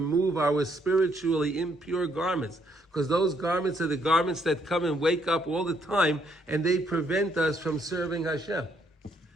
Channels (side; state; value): both; normal; correlation 0.71